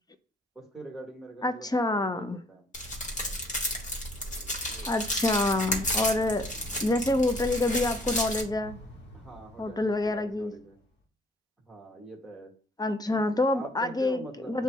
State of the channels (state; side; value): normal; both; correlation 0.59